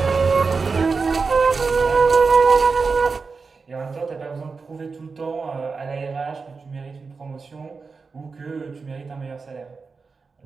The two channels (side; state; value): left; quieter; 4.7 dB